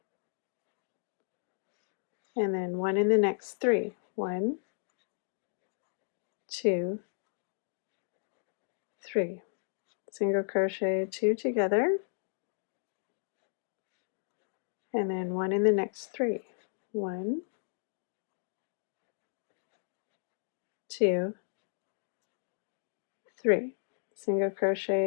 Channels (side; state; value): right; silent; digital silence